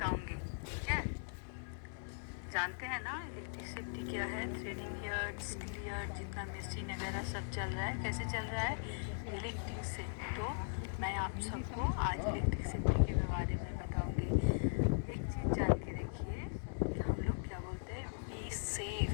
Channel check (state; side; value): silent; right; digital silence